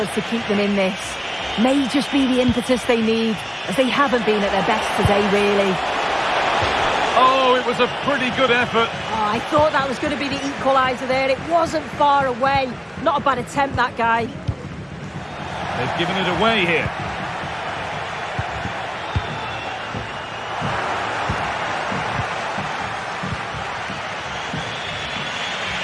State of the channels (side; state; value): both; identical; correlation 1.00